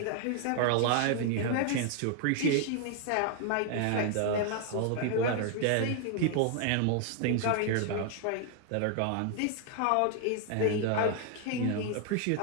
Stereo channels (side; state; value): both; different; correlation 0.00